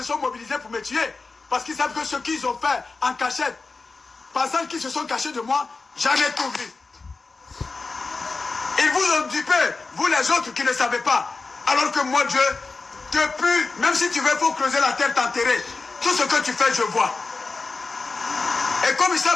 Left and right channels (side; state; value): right; quieter; 4.0 dB